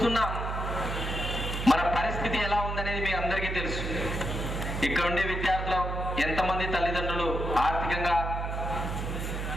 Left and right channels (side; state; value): right; noise; hum, 3 dB below the sound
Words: మన పరిస్థితి ఎలా ఉందనేది మీ అందరికీ తెలుసు. ఇక్కడ ఉండే విద్యార్థులు ఎంతమంది తల్లిదండ్రులు ఆర్థికంగా